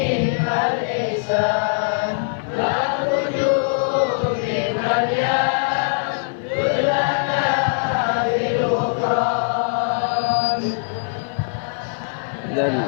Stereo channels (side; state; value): right; silent; 56 dB below the other